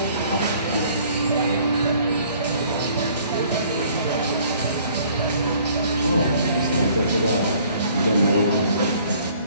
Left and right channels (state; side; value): inverted; both; correlation -0.57